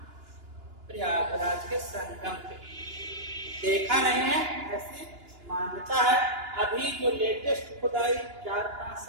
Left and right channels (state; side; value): late; left; 2.9 ms